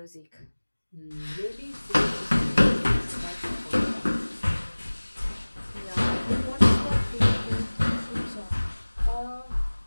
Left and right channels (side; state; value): both; inverted; correlation -1.00